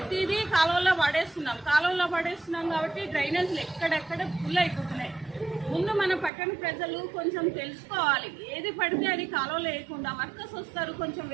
కాలువలో పడేస్తున్నాం కాబట్టి డ్రైనేజ్లు ఎక్కడెక్కడ ఫుల్ అయిపోతున్నాయి. ముందు మన పట్టణ ప్రజలు కొంచెం తెలుసుకోవాలి. ఏది పడితే అది కాలువలో వేయకుండా వర్కర్స్ వస్తారు, కొంచెం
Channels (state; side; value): drops out; left; at 6.3 s